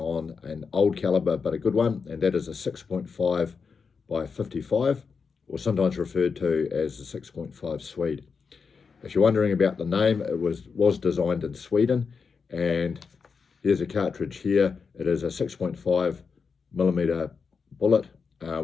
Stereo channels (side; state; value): right; quieter; 5.4 dB